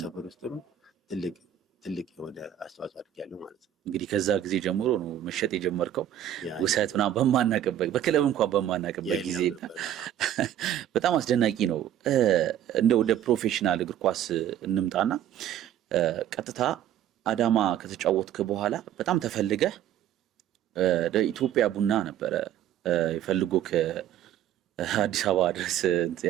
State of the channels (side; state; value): left; quieter; 10.9 dB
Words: ውስጥም ትልቅ የሆነ አስተዋጽኦ አድርጊያለሁ ማለት ነው። እንግዲህ ከዛ ጊዜ ጀምሮ ነው መሸጥ የጀመርከው ውሰት ምናምን በማናቅበት በክለብ እንኳን በማናቅበት ጊዜ በጣም አስደናቂ ነው። እንደ ወደ ፕሮፌሽናል እግር ኳስ እንምጣና ቀጥታ አዳማ ከተጫወትክ በኋላ በጣም ተፈልገህ ኢትዮጵያ ቡና ነበረ ይፈልጎ ከአዲስ አበባ ድረስ